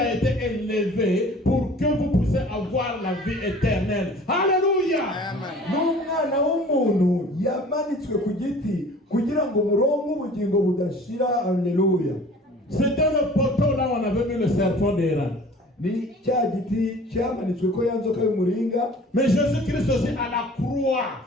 été élevé pour que vous puissiez avoir la vie éternelle. Alléluia. C'était le poteau là où on avait mis le serpent d'Éran. Mais Jésus-Christ aussi à la croix,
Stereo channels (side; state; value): both; normal; correlation 0.47